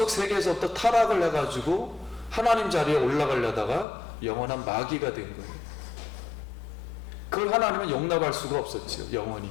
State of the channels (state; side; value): drops out; right; at 3.9 s